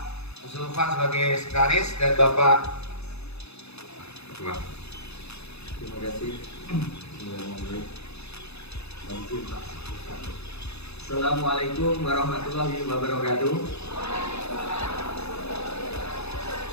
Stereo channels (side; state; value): right; late; 0.79 ms